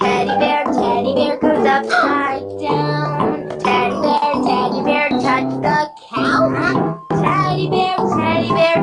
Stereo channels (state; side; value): identical; both; correlation 1.00